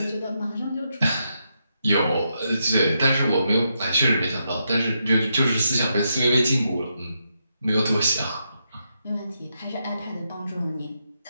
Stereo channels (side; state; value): both; inverted; correlation -0.82